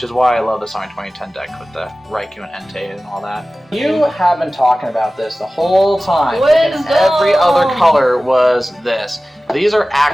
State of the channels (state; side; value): normal; both; correlation 0.97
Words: is why I love this on my 2010 deck with the Raikou and Entei and all that. You have been talking about this the whole time. Every other color was this. These are